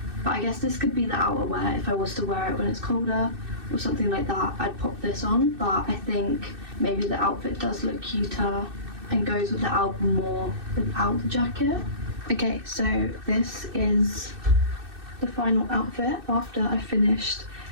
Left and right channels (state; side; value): late; left; 2.6 ms